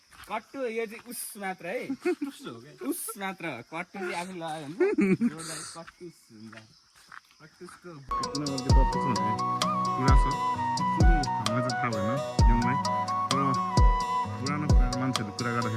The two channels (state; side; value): identical; both; correlation 1.00